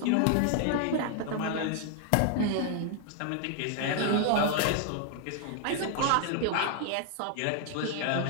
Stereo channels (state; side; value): different; both; correlation 0.00